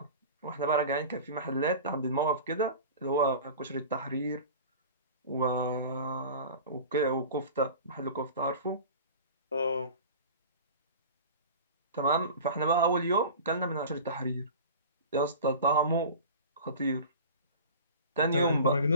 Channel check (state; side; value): inverted; both; correlation -0.36